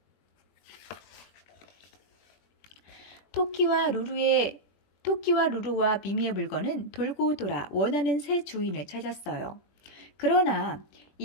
토끼와 루루와 미미의 물건은 돌고 돌아 원하는 새 주인을 찾았어요. 그러나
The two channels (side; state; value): right; late; 21 ms